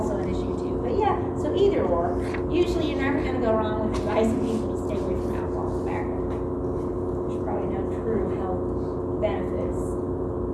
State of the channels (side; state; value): both; identical; correlation 1.00